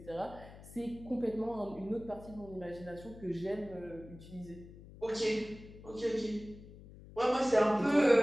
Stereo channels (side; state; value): left; noise; hum, 17 dB below the sound